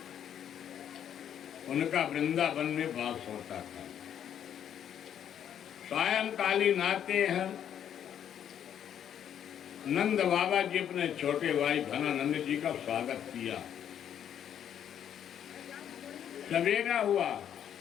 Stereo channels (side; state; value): right; quieter; 9.5 dB